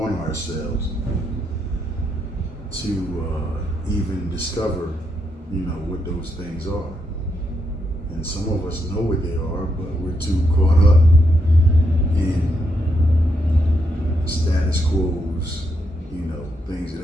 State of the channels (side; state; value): both; normal; correlation 0.79